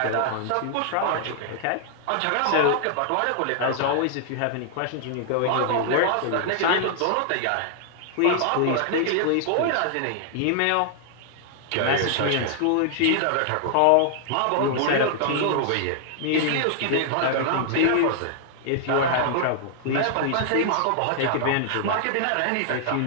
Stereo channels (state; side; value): different; both; correlation -0.01